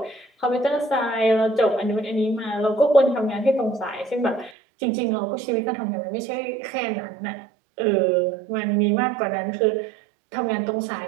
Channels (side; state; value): left; drops out; at 4.5 s